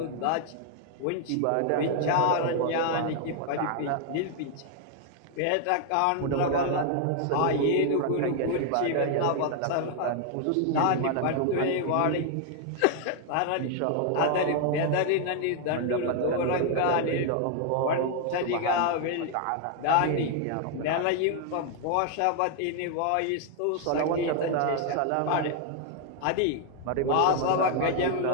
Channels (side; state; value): both; different; correlation 0.00